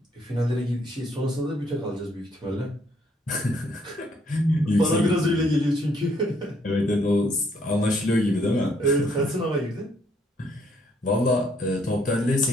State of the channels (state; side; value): normal; both; correlation 0.68